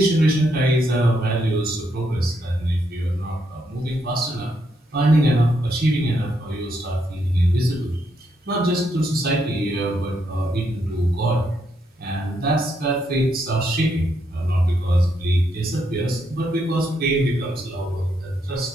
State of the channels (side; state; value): both; normal; correlation 0.77